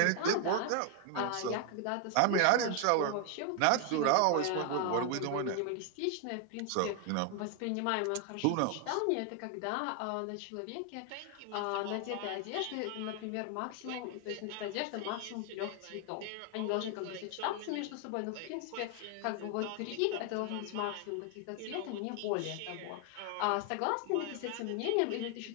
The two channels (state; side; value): different; both; correlation 0.00